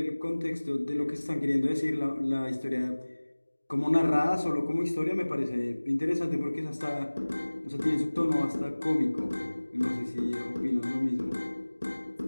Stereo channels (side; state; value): both; inverted; correlation -1.00